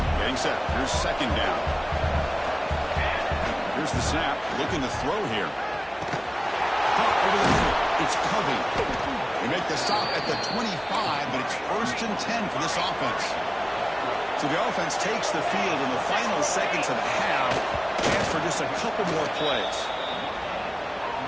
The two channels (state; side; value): identical; both; correlation 1.00